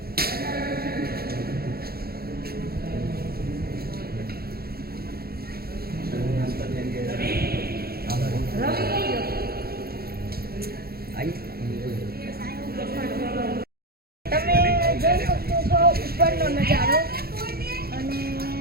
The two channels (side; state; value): left; late; 0.45 ms